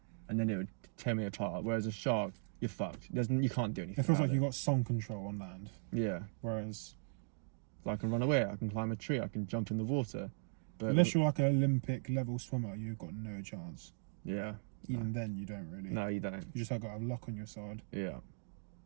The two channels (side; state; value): left; silent; digital silence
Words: and then it would tear me apart. Whereas a shark, you're fucked. You can't do anything. It feels about like you've got some control on land. Yeah. Whereas, I can run away, I can climb a tree, I can jump in the water. But unless you're like an Olympic level swimmer, you've got no chance. Yeah. Even then, you don't really. No, you don't. You just have got to have luck on your side. Yeah.